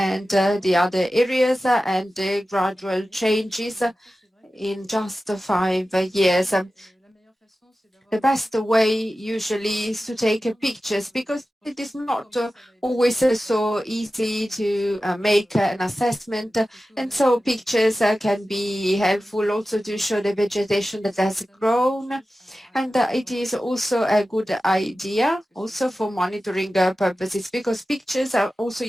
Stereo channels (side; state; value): both; normal; correlation 0.94